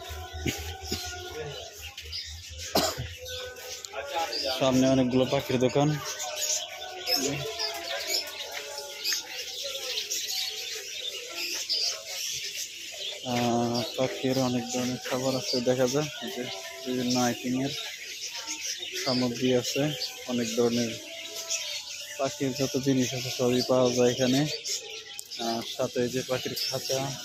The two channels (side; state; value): both; identical; correlation 1.00